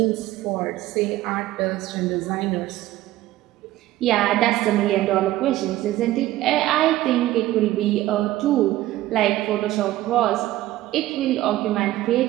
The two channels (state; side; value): quieter; left; 15.5 dB